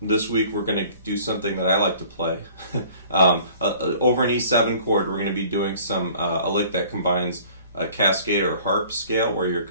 week we're going to do something that I like to play. Over an E7 chord, we're going to be doing a lick that combines a Cascade or harp scale, where you're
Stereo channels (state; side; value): inverted; both; correlation -0.51